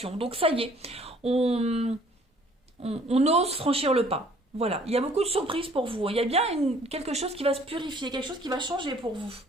Donc, ça y est. On ose franchir le pas. Voilà. Il y a beaucoup de surprises pour vous. Il y a bien quelque chose qui va se purifier. Quelque chose qui va changer pour vous.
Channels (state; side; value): normal; both; correlation 0.57